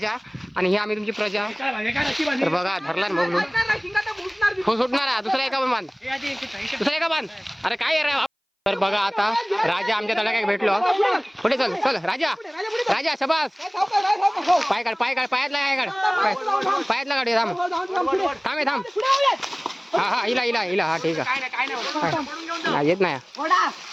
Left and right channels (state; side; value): identical; both; correlation 1.00